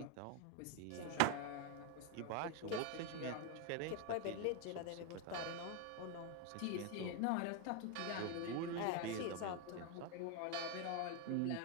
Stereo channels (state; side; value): different; both; correlation 0.01